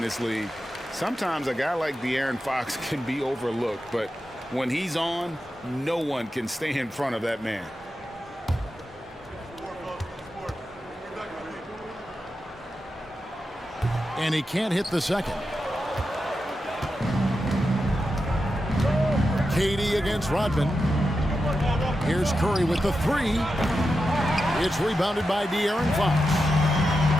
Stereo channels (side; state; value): both; normal; correlation 0.89